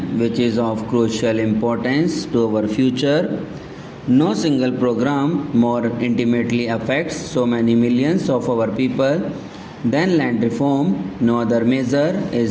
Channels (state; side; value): identical; both; correlation 1.00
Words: which is of crucial importance to our future. No single program more intimately affects so many millions of our people than land reform. No other measure